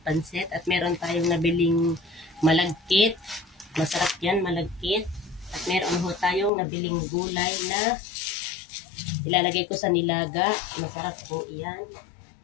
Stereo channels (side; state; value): right; drops out; at 6.5 s